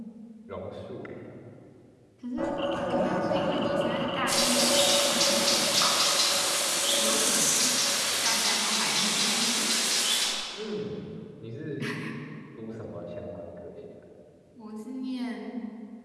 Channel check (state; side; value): identical; both; correlation 1.00